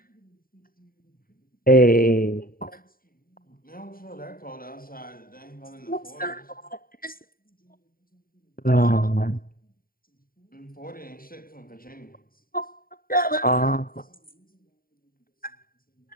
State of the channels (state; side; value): late; right; 0.42 ms